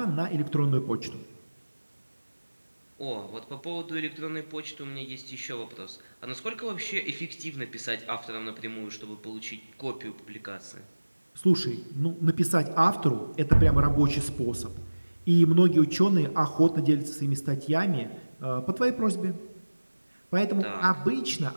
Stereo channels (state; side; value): inverted; both; correlation -1.00